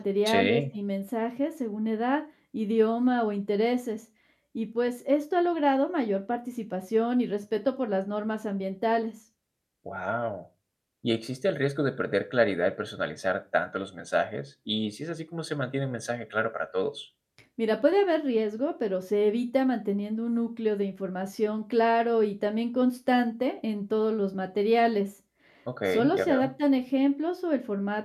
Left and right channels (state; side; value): identical; both; correlation 1.00